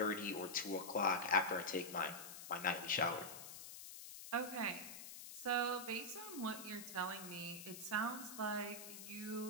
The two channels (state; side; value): noise; left; hiss, 11 dB below the sound